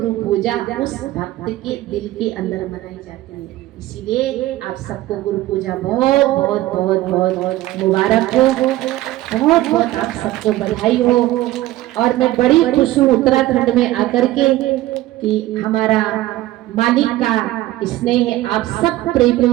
पूजा उस भक्त के दिल के अंदर मनाई जाती है। इसीलिए आप सबको गुरु पूजा बहुत बहुत बहुत बहुत मुबारक हो, बहुत बहुत आप सबको बधाई हो। और मैं बड़ी खुश हूँ उत्तराखंड में आकर के कि हमारा मालिक का स्नेह, आप सब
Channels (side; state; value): left; quieter; 16.2 dB